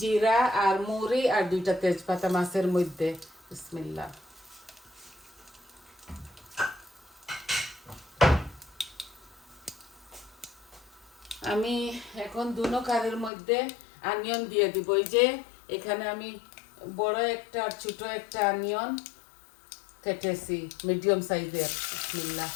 আর মুড়ি আর দুইটা তেজপাতা মাছের মধ্যে। বিসমিল্লাহ। আমি এখন দুনো কারের মধ্যে অনিয়ন দিয়ে দিব। এই যে এখানে আমি বড় একটা আর ছোট একটা অনিয়ন কেটেছি, মিডিয়াম সাইজের। বিসমিল্লাহ।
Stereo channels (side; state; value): right; drops out; at 13.3 s